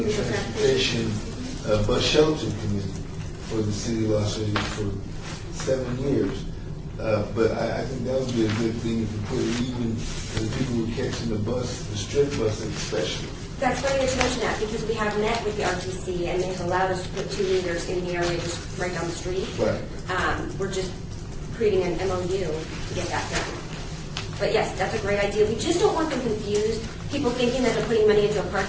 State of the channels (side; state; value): both; identical; correlation 1.00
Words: transportation, bus shelter committee for the city of Los Angeles for 7 years. But I think that would be a good thing if you put it even for the people who are catching the bus, the strip bus especially. That's funny that you mention that, because we have met with the RTC, and they've allowed us to put 2 meters in the area just right down the street. Right. We're just creating an MOU to get that done. But yes, that's a great idea. We just don't want them confused, people thinking that they're putting money into a